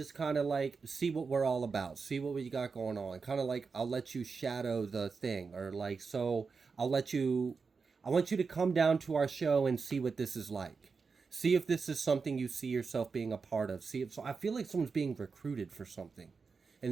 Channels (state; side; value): quieter; left; 4.9 dB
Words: kind of like see what we're all about, see what we got going on. Kind of like, I'll let you shadow the thing, or like, so I want you to come down to our show and see what this is like. See if this is something you see yourself being a part of. So I feel like someone's being recruited for something.